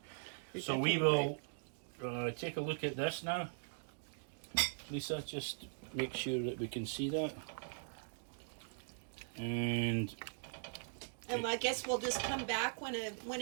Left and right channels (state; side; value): silent; left; digital silence